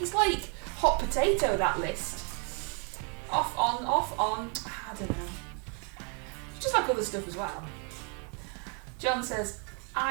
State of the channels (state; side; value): quieter; left; 37.9 dB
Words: it's like hot potato, that list. Off on. I don't know. It's just like other stuff as well. John says,